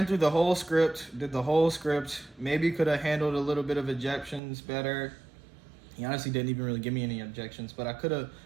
through the whole script, did the whole script. Maybe could have handled a little bit of objections better. He honestly didn't even really give me any objections, but I could have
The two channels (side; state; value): left; drops out; at 4.4 s